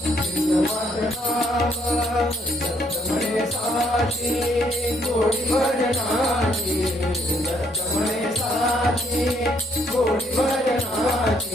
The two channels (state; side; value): normal; both; correlation 0.69